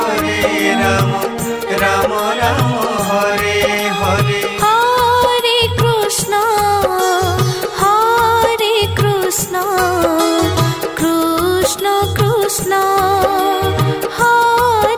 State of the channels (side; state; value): both; identical; correlation 1.00